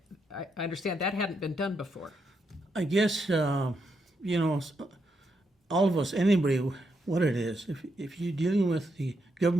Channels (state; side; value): normal; both; correlation 0.81